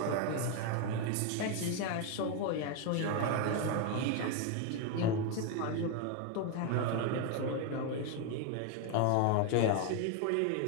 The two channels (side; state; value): both; different; correlation 0.01